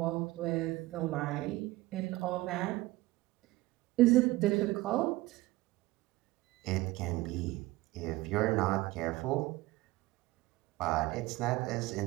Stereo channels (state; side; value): quieter; left; 19.2 dB